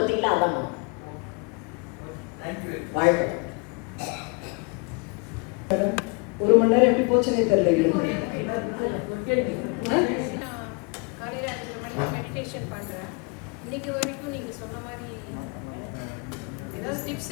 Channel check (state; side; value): quieter; right; 31.0 dB